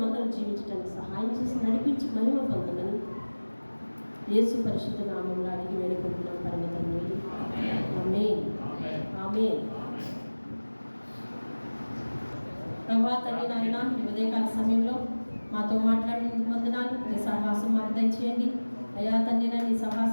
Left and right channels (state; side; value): inverted; both; correlation -1.00